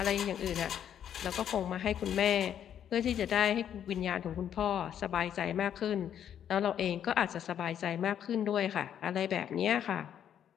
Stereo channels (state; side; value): quieter; right; 9.5 dB